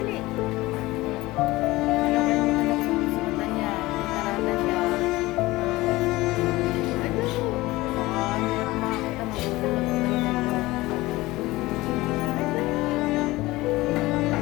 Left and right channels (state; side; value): quieter; right; 19.5 dB